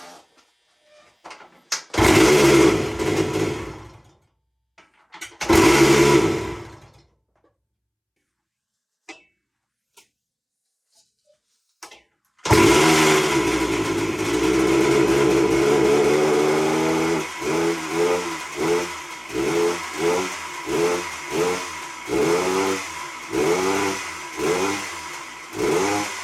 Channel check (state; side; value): identical; both; correlation 1.00